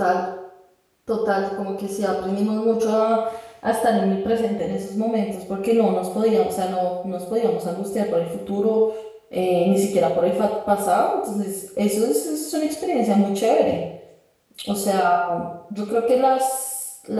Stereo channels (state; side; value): identical; both; correlation 1.00